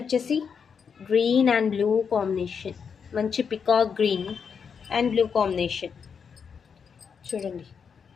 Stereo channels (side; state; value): right; quieter; 6.5 dB